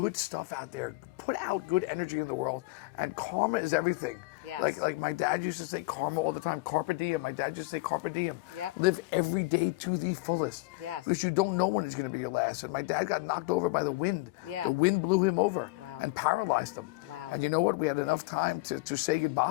stuff out there. Put out good energy in the world, and karma is everything. Yes. Like my dad used to say karma all the time. Carpe diem. My dad used to say carpe diem. Yep. Live every day to the fullest. Yes. Because you don't know when it's going to be your last. And my dad got knocked over by the wind. Yeah. The wind blew him over. Wow. And paralyzed him. Wow. And you know what? We had enough time to say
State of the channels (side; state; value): right; quieter; 22.8 dB